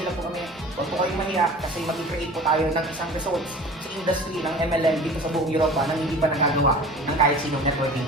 lang po kami. Huwag po kayong mahiya kasi mag-create po tayo ng isang results sa industry ng MLM dito sa buong Europa nang hindi pa nagagawa ng kahit sinong networking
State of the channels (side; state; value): both; normal; correlation 0.41